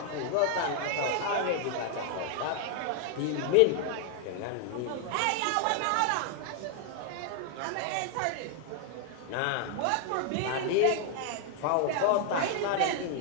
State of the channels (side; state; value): both; different; correlation 0.00